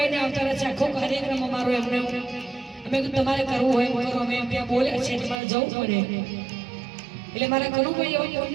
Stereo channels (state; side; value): drops out; left; at 5.4 s